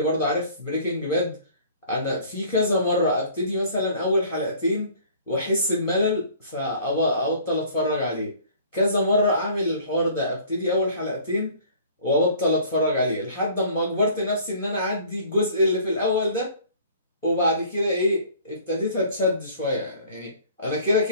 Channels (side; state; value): both; inverted; correlation -0.51